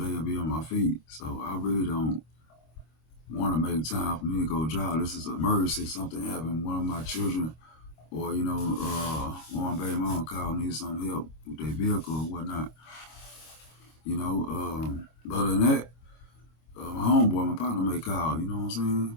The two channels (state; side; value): late; right; 25 ms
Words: and be on my feet. So I really don't want to make time for me to go drive. This is an emergency. Something happened. One of my children or, one baby mom called, needs some help with their vehicle or whatnot. Other than that, my homeboy, my partner may call, you know what I'm